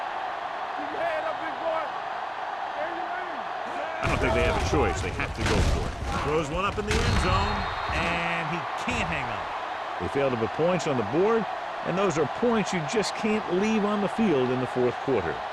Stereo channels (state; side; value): identical; both; correlation 1.00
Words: I don't think they have a choice. They have to go for it. Throws one up in the end zone, and he can't hang on. They failed to put points on the board, and those are points you just can't leave on the field in the fourth quarter.